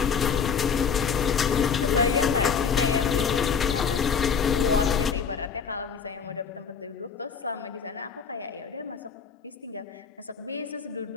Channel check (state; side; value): quieter; right; 6.3 dB